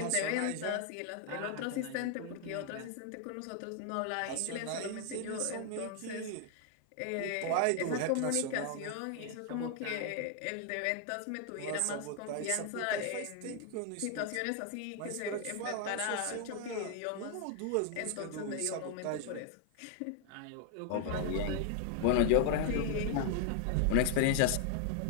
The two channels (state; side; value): different; both; correlation 0.00